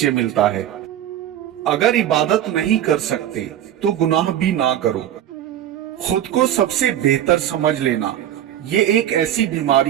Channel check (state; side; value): quieter; left; 11.3 dB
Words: ملتا ہے۔ اگر عبادت نہیں کر سکتے تو گناہ بھی نہ کرو۔ خود کو سب سے بہتر سمجھ لینا یہ ایک ایسی